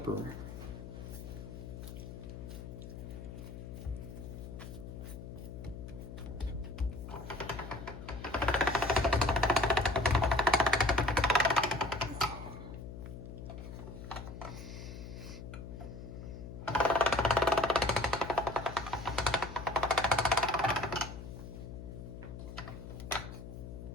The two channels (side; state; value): left; noise; hum, 10 dB below the sound